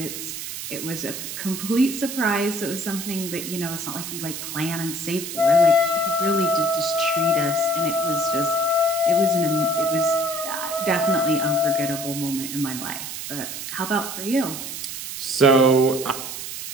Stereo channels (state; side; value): noise; right; hiss, 7 dB below the sound